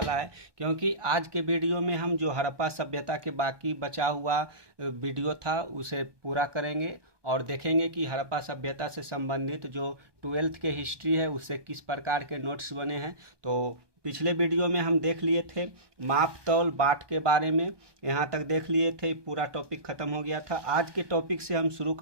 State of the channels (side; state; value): left; late; 1.2 ms